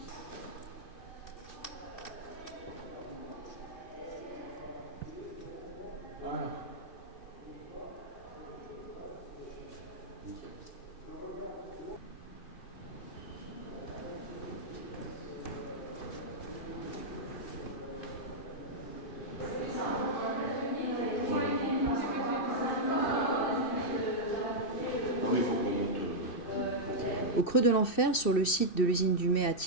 Ah. Ah oui, il faut qu'on monte. Au creux de l'enfer, sur le site de l'usine du Mai à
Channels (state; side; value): late; right; 2.7 ms